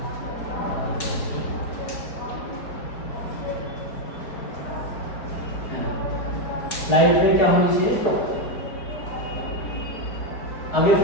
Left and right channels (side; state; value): right; late; 4.7 ms